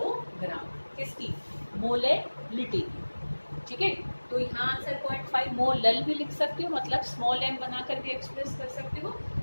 किसकी मोलैरिटी, ठीक है। तो यहाँ आंसर 0.5 मोलल भी लिख सकते हो, मतलब स्मॉल m बनाकर भी एक्सप्रेस कर सकते हो,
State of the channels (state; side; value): inverted; both; correlation -1.00